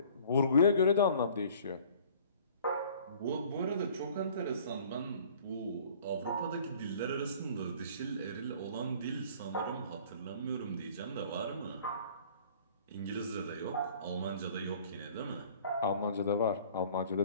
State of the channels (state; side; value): inverted; both; correlation -0.51